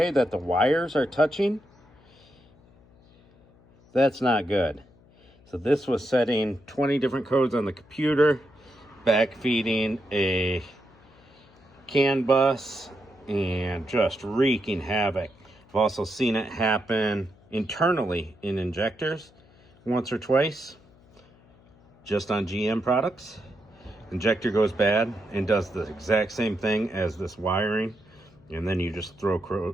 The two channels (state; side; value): noise; left; hum, 28 dB below the sound